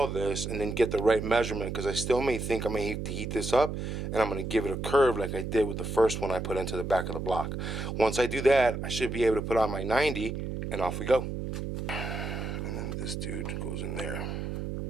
this and then get the right measurement, because I still may think I may have to heat this up, and I'm going to give it a curve like I did with the first one I put into the back of the block. Once I do that, I should be able to put on my 90 and off we go. And then this dude goes in there.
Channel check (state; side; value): noise; right; hum, 4 dB below the sound